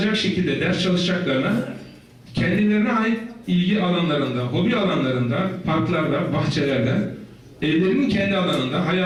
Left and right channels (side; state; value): both; identical; correlation 1.00